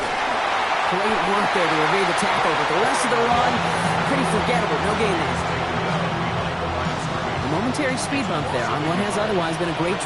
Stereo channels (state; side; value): identical; both; correlation 1.00